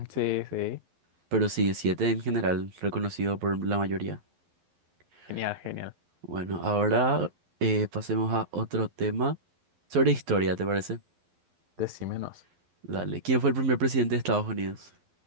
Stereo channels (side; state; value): left; late; 11 ms